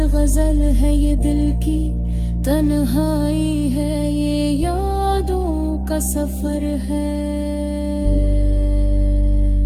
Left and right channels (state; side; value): identical; both; correlation 1.00